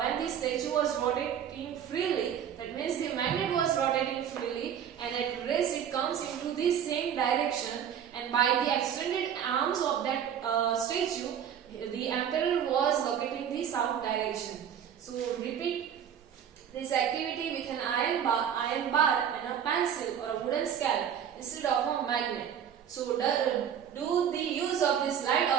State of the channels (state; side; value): quieter; left; 8.9 dB